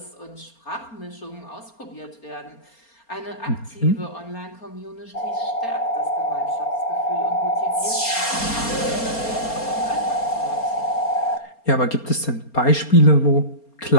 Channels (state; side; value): late; right; 4.3 ms